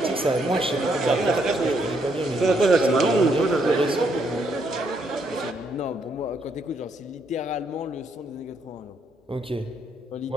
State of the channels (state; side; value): normal; both; correlation 0.74